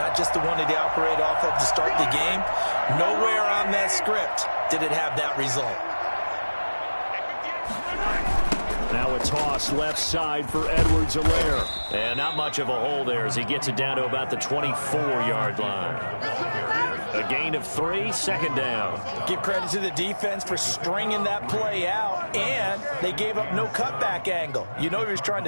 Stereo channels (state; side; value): inverted; both; correlation -1.00